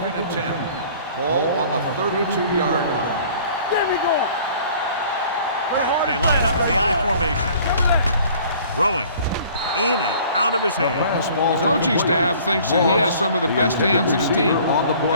and 10. Ball on the 32-yard line. There we go. They line up in the I formation. Throwing. In and out of his hands. The coaching staff thinks that he has some of the best hands in the team,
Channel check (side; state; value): both; inverted; correlation -0.52